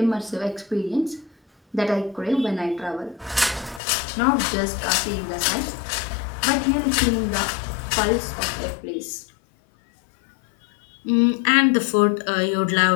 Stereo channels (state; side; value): drops out; right; at 3.8 s